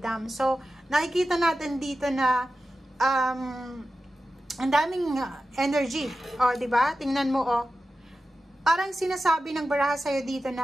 So, nakikita natin dito na ang daming energy. O, diba? Tingnan mo, parang sinasabi ng baraha sa iyo dito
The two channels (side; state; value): both; normal; correlation 0.93